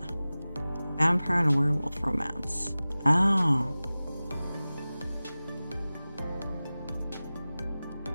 and a werewolf romance. Oh.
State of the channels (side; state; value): both; inverted; correlation -0.97